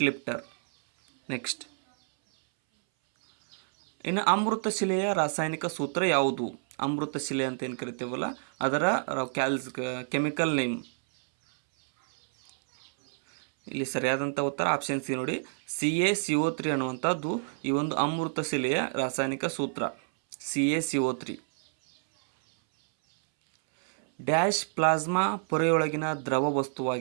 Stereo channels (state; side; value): silent; left; 59 dB below the other